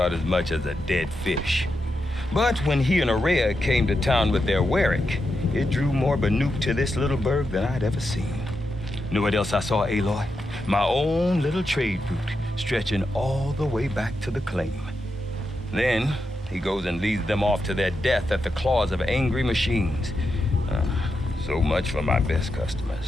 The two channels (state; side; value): normal; both; correlation 0.86